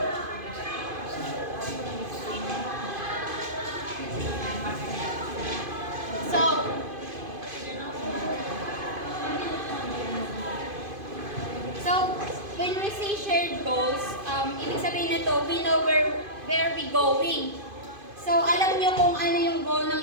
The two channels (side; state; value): left; late; 2.5 ms